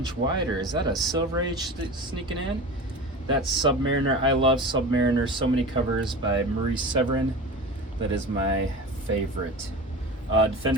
wider. Is that a Silver Age sneaking in? That's Submariner. I love Submariner. So many covers by Marie Severin. That is my favorite.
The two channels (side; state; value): both; normal; correlation 0.32